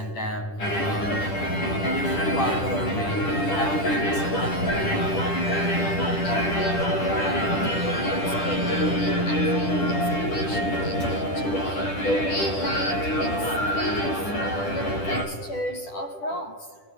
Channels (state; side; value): late; right; 10 ms